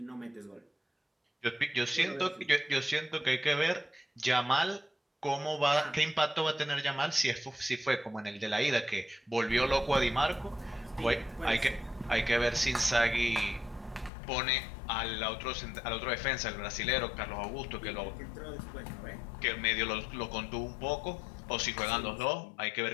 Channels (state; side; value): drops out; right; at 14.1 s